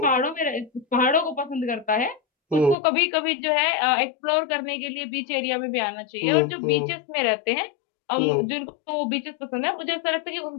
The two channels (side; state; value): right; drops out; at 2.8 s